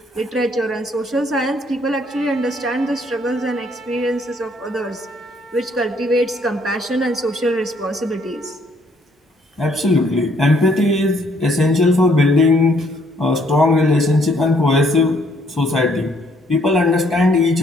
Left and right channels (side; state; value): both; normal; correlation 0.66